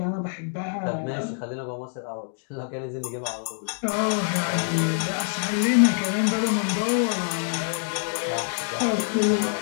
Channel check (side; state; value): right; silent; digital silence